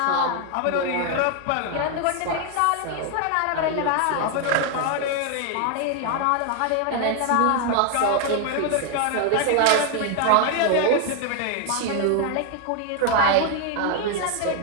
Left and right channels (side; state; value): both; different; correlation 0.00